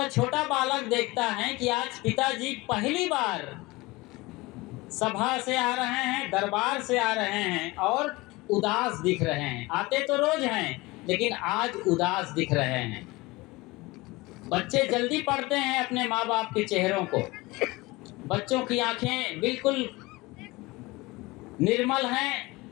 छोटा बालक देखता है कि आज पिताजी पहली बार सभा से आ रहे हैं, दरबार से आ रहे हैं और उदास दिख रहे हैं। आते तो रोज हैं, लेकिन आज उदास दिख रहे हैं। बच्चे जल्दी पढ़ते हैं अपने माँ बाप के चेहरों को। बच्चों की आंखें बिल्कुल निर्मल हैं,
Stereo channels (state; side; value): quieter; right; 22.0 dB